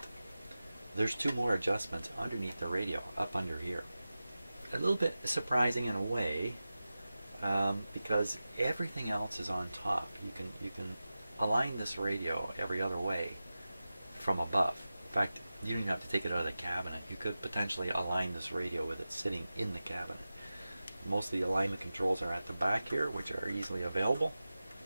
there's 2 more adjustments underneath the radio, up under here. A little bit surprising in a way, because everything else is on top. You can align this radio every other way from above. In fact, you don't even have to take it out of the cabinet. You could potentially align this radio with it sitting in the cabinet. Most of the alignment controls are at the back here, which are easily available.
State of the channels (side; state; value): both; inverted; correlation -0.95